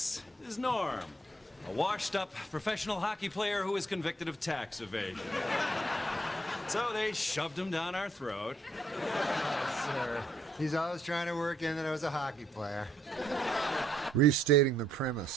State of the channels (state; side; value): normal; both; correlation 0.70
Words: is Norm, a washed-up professional hockey player who was convicted of tax evasion. So they shoved him down our throat. Sir, he's always trying to work in that I was a hockey player. Restating the